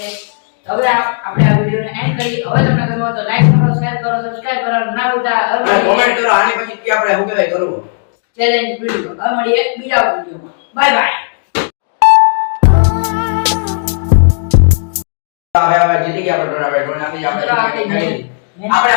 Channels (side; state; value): right; silent; 68 dB below the other